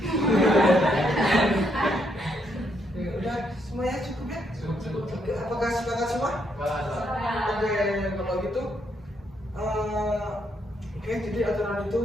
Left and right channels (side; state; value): both; normal; correlation 0.75